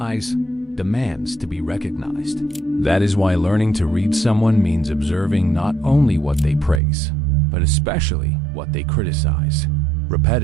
demands to be recognized. That is why learning to read someone means observing not only what they praise, but especially what they criticize.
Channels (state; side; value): drops out; left; at 6.8 s